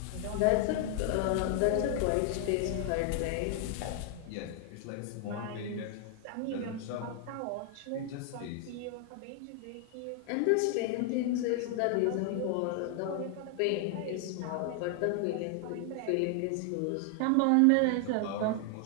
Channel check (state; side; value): different; both; correlation 0.00